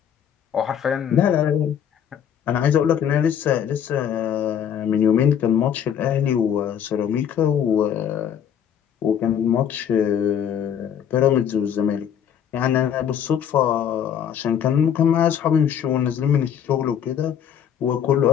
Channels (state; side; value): quieter; right; 8.8 dB